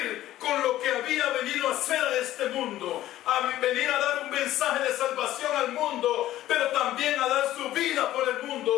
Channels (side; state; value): right; quieter; 14.1 dB